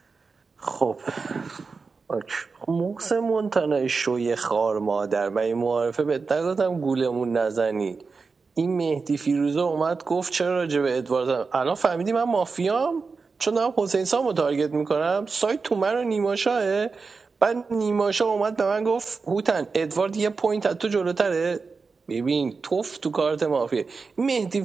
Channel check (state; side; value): quieter; left; 4.6 dB